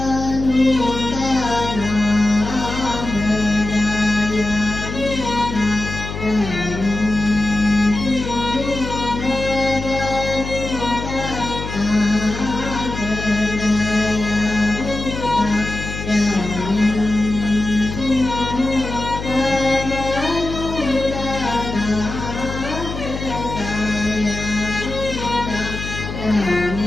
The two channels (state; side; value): noise; left; hum, 7 dB below the sound